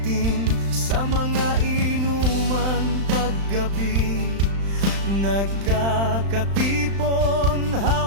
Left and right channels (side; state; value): left; late; 35 ms